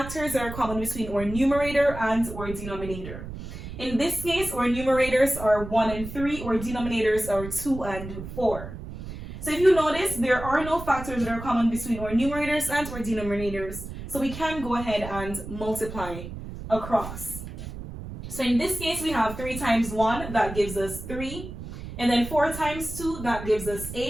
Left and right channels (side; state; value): right; noise; rumble, 10 dB below the sound